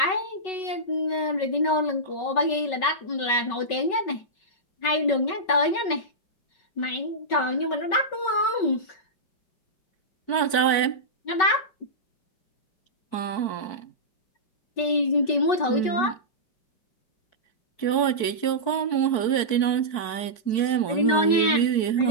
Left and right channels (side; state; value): right; late; 4.6 ms